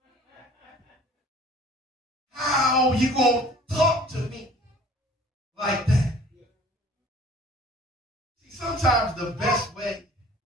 How you going to talk to me like that? sometimes the best way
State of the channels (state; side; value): normal; both; correlation 0.50